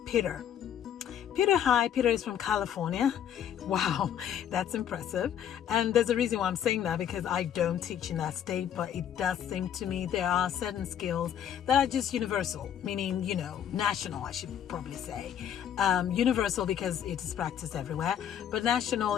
Peter. Hi, Peter is from California. Wow, that's impressive. And there's a reason why I'm saying that, because I don't teach in that state, but it does seem to me there are certain skills that are just universal, meaning, national, I should probably say. Universal because it is practiced everywhere, but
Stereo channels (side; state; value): right; quieter; 9.5 dB